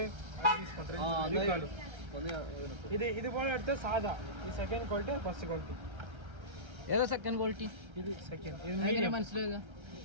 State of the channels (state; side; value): late; left; 1.3 ms